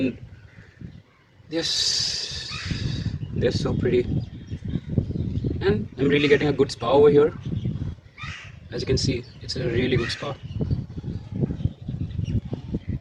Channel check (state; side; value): identical; both; correlation 1.00